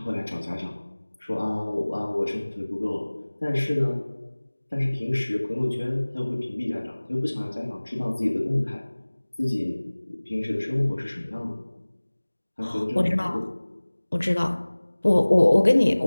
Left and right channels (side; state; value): both; inverted; correlation -1.00